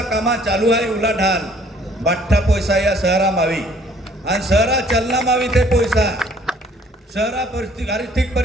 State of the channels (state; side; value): normal; both; correlation 0.58